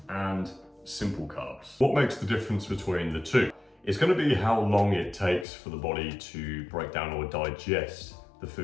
and simple carbs. What makes the difference between the two? It's going to be how long it takes for the body to break down or digest the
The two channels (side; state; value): right; drops out; at 5.5 s